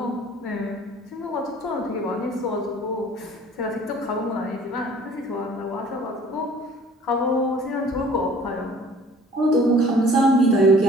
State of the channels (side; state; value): both; normal; correlation 0.51